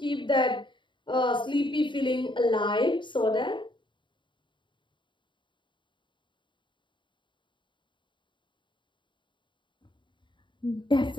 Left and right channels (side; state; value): right; late; 0.23 ms